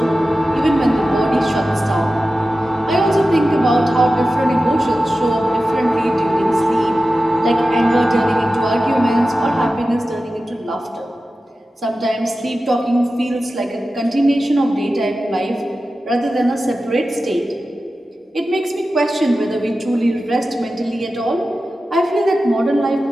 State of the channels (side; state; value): both; normal; correlation 0.94